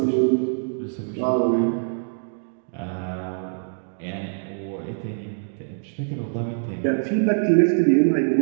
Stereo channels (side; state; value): left; silent; digital silence